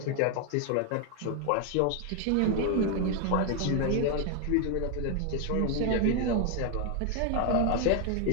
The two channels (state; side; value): different; both; correlation 0.01